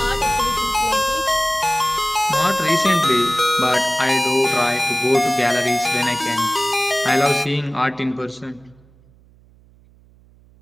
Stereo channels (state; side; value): noise; right; hum, 29 dB below the sound